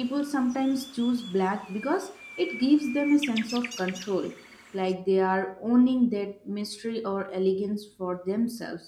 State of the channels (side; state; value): both; identical; correlation 1.00